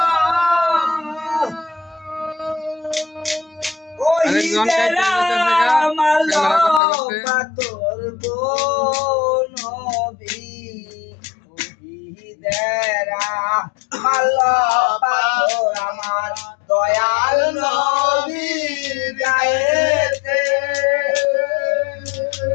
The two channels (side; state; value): right; drops out; at 6.8 s